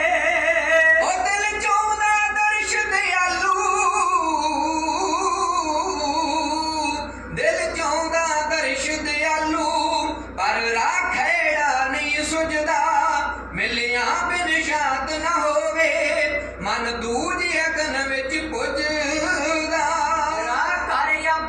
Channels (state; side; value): identical; both; correlation 1.00